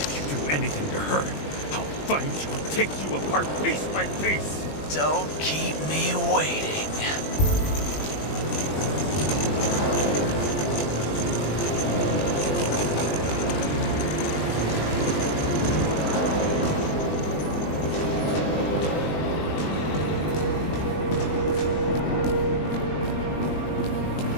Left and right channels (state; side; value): late; right; 20 ms